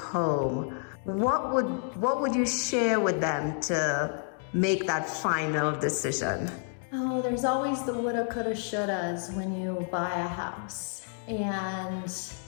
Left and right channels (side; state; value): right; silent; 58 dB below the other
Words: what would you share with them to make that final decision? Oh, there's always the woulda, coulda, shouldas when you buy a house and